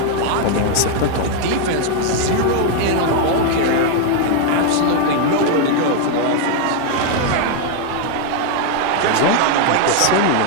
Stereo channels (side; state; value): both; different; correlation 0.00